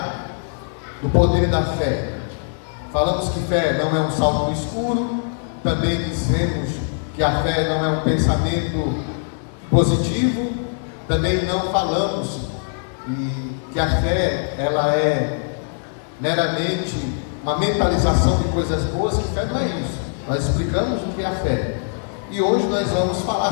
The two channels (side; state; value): right; silent; 65 dB below the other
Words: do poder da fé. Falamos que fé não é um salto no escuro. Também dizemos que a fé não é um pensamento positivo. Também não falamos que a fé ela é meramente uma mentalização de coisas boas, que fé não é isso. Nós explicamos o que é a fé. E hoje nós vamos falar